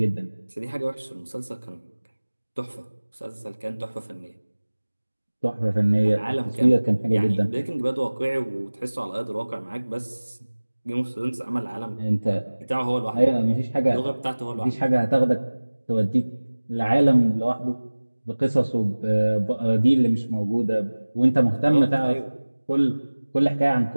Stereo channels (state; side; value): inverted; both; correlation -1.00